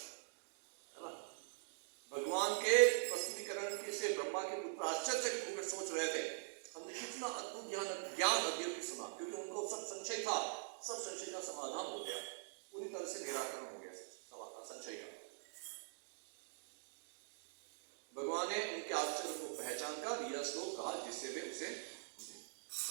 है ना। भगवान के प्रस्तुतिकरण के से ब्रह्मा के पुत्र आश्चर्य होकर सोच रहे थे, हमने कितना अद्भुत ज्ञान अध्ययन सुना, क्योंकि उनको सब संशय था, सब संशय का समाधान हो गया, पूरी तरह से निराकरण हो गया संशय का। भगवान ने उनके आश्चर्य को पहचान कर यह श्लोक कहा, जिससे वे उसे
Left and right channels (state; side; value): silent; left; digital silence